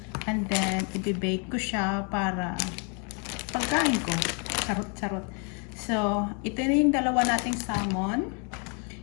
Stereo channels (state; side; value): quieter; right; 37.6 dB